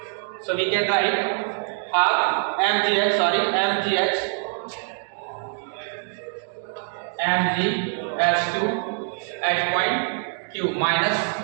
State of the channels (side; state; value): left; silent; 62 dB below the other